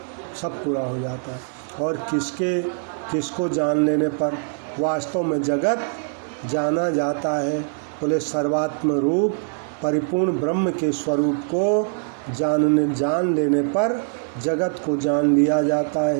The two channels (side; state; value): left; silent; 62 dB below the other